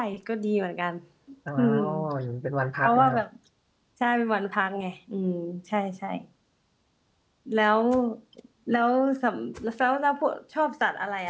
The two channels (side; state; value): both; identical; correlation 1.00